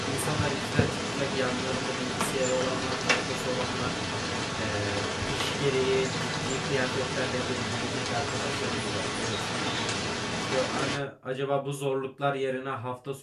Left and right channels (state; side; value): identical; both; correlation 1.00